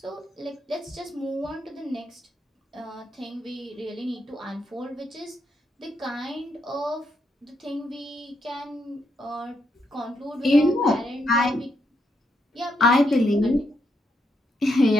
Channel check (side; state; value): both; normal; correlation 0.78